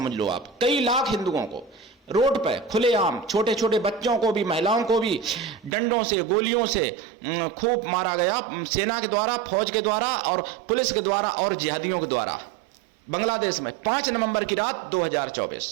लो आप, कई लाख हिंदुओं को रोड पे खुलेआम, छोटे छोटे बच्चों को भी, महिलाओं को भी डंडों से, गोलियों से खूब मारा गया, सेना के द्वारा, फौज के द्वारा और पुलिस के द्वारा और जिहादियों के द्वारा। बांग्लादेश में 5 नवंबर की रात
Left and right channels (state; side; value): drops out; left; at 5.7 s